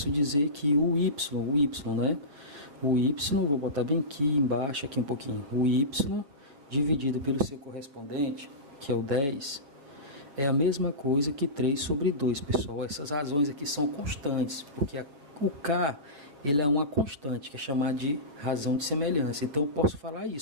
dizer que o y, né? O y, vou botar bem aqui embaixo, aqui um pouquinho. O y dividido pelo seu correspondente, que é o 10, é a mesma coisa que 3 sobre 2, pessoal. Essas razões aqui são constantes, porque o K ele é uma constante, que é chamada de razão de semelhança. Então eu posso falar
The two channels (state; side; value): late; left; 7.0 ms